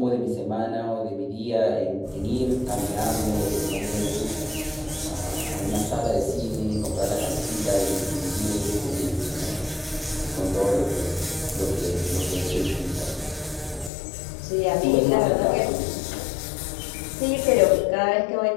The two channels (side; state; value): right; drops out; at 13.9 s